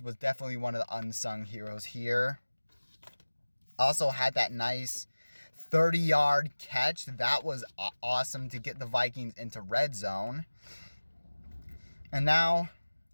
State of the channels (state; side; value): inverted; both; correlation -1.00